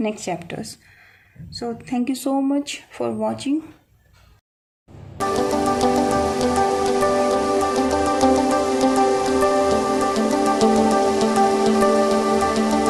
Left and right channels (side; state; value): both; identical; correlation 1.00